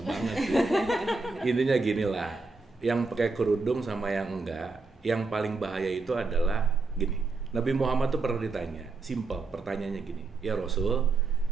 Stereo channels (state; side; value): quieter; left; 3.8 dB